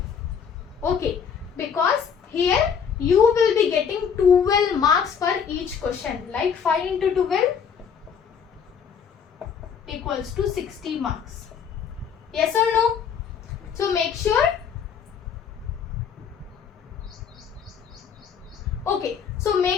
Okay, because here you will be getting 12 marks for each question. Like 5 into 12 equals to 60 marks. Yes or no? So make sure. Okay, so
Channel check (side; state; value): right; quieter; 7.0 dB